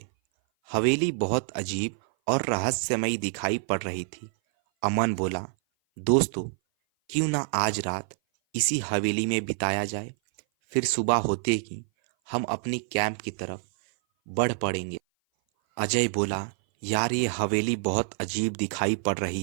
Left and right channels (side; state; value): left; silent; 57 dB below the other